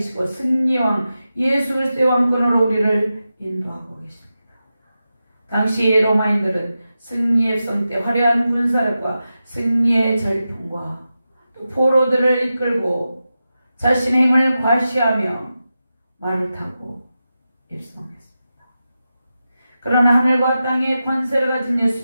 승리의 왕 예수 그리스도의 왕권으로 우리를 인도하고 계십니다. 당시 로마인들은 승리의 성 때 화려한 군사력과 승리의 절풍과 또 포로들을 이끌고 자신의 힘을 과시하며 말을 타고 입성했습니다. 그러나 하늘과 땅의 권세를 가진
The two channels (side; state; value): both; inverted; correlation -0.91